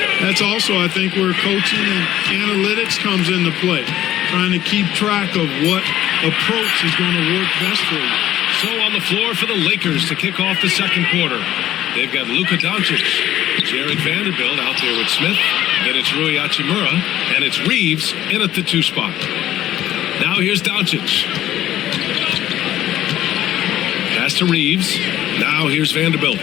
that's also, I think, where coaching and analytics comes into play, trying to keep track of what approach is going to work best for you. So on the floor for the Lakers to kick off the second quarter, they've got Luka Doncic, Jared Vanderbilt out there with Smith, then it's Rui Hachimura, and it's Reeves in at the 2 spot. Now here's Doncic. Pass to Reeves. Now here's Vanderbilt.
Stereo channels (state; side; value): quieter; right; 13.1 dB